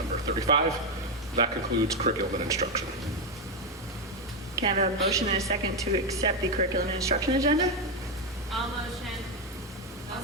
35. That concludes curriculum and instruction. Can I have a motion and a second to accept the curriculum and instruction agenda? All motion. I'll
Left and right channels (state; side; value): normal; both; correlation 0.06